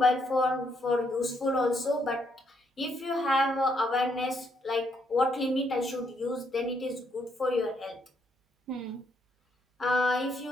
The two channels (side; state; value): both; normal; correlation 0.74